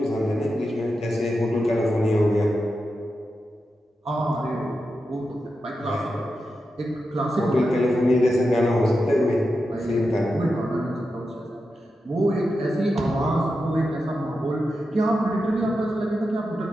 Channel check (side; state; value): both; normal; correlation 0.89